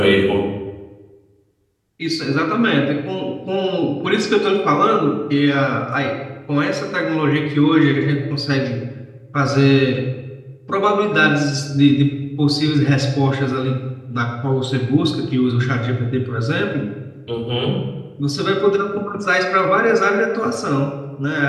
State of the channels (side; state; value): both; identical; correlation 1.00